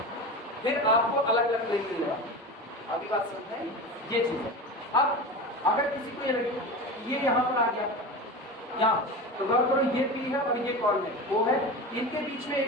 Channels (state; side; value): normal; both; correlation 0.28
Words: फिर आपको अलग अलग प्लेन मिलेगा। अभी बात समझते हैं, ये चीज़ है। अब अगर किसी को ये लगे ये यहाँ पर आ गया यहाँ, तो गौर करो ये पी है और ये कॉल है, वो है, इनके बीच में